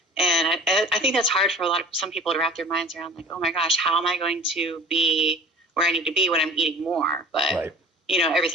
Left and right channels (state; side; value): normal; both; correlation 0.41